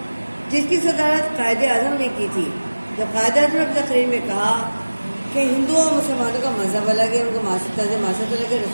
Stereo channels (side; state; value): both; inverted; correlation -1.00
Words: جس کی صدارت قائد اعظم نے کی تھی. جب قائد اعظم نے اپنی تقریر میں کہا کہ ہندوؤں اور مسلمانوں کا مذہب الگ ہے، ان کا طرز معاشرت الگ ہے،